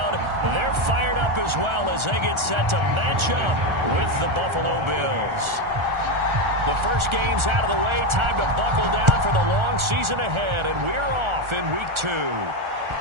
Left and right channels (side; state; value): left; late; 1.4 ms